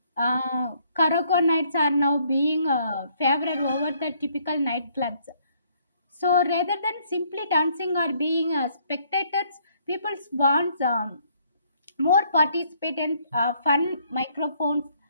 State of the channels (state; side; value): inverted; both; correlation -0.66